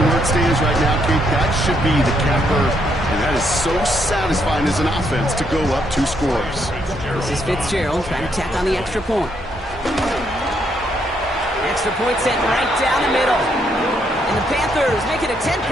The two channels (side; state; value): both; normal; correlation 0.74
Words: where it stands right now, Kate, that should be the capper. And that is so satisfying as an offense to go up 2 scores. This is Fitzgerald trying to tack on the extra point. Extra point sent right down the middle. And the Panthers make it a